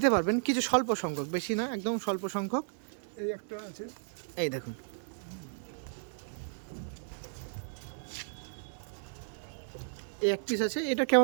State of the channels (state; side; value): silent; left; digital silence